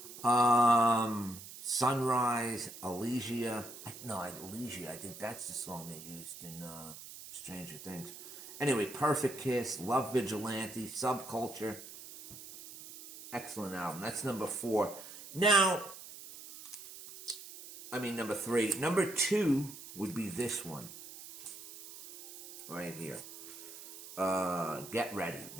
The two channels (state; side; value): noise; right; hiss, 14 dB below the sound